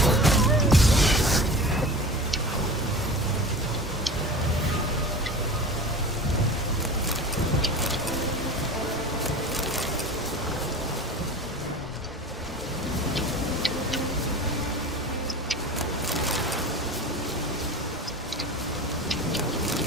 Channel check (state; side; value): normal; both; correlation 0.35